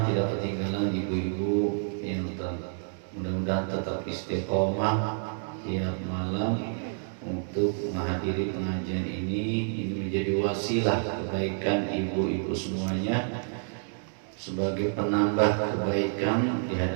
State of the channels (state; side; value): silent; left; digital silence